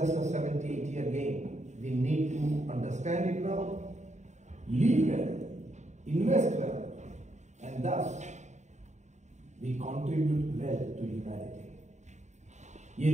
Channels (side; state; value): left; late; 0.34 ms